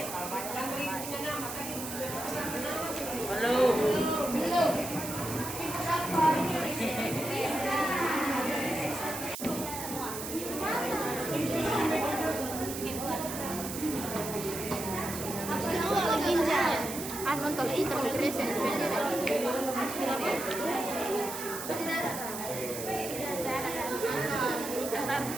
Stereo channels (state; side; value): noise; right; hiss, 7 dB below the sound